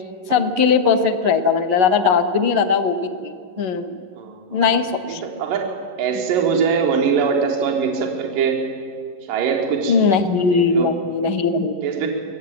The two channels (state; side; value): late; left; 11 ms